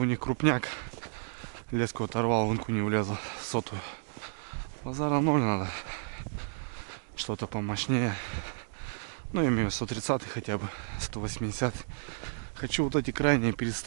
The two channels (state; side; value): silent; left; digital silence